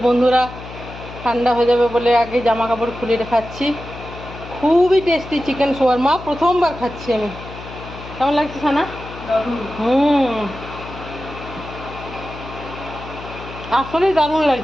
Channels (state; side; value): noise; left; hum, 13 dB below the sound